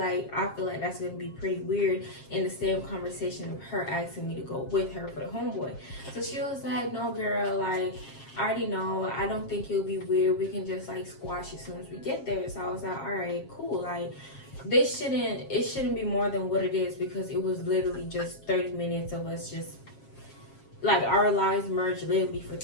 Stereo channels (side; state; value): right; late; 7.4 ms